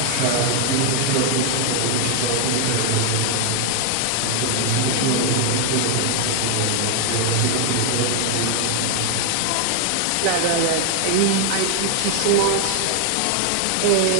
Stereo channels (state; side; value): different; both; correlation 0.00